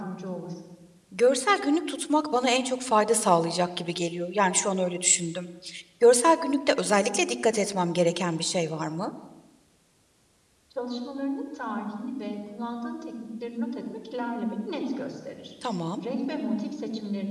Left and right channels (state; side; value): identical; both; correlation 1.00